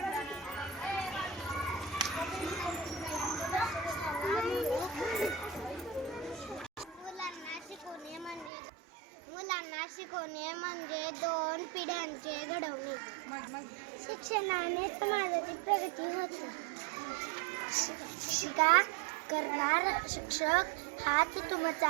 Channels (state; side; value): drops out; left; at 8.5 s